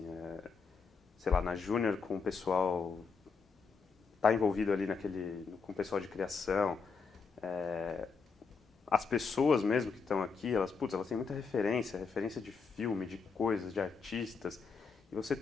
sei lá, na Júnior com o pessoal, tá envolvido ali com o pessoal de criação, as pessoas mesmo que estão aqui, elas têm muita referência de filme, de coisas, de artistas, e você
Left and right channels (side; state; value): right; quieter; 5.2 dB